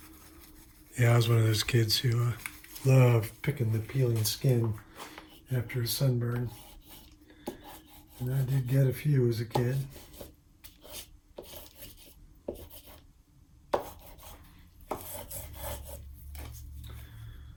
Yeah, I was one of those kids who loved picking the peeling skin after a sunburn. And I did get a few as a kid.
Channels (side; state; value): both; identical; correlation 1.00